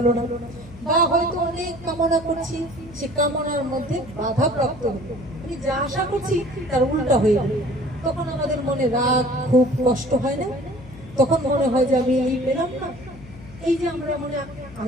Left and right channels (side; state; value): left; noise; hum, 18 dB below the sound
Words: না, বা হয়তো অনেক কামনা করছি, সে কামনার মধ্যে বাধা প্রাপ্ত হলো, আমি যা আশা করছি তার উল্টা হয়ে গেল। তখন আমাদের মনে রাগ খুব কষ্ট হয় না? তখন মনে হয় যে আমি এই পেলাম না, এই যে আমরা মনে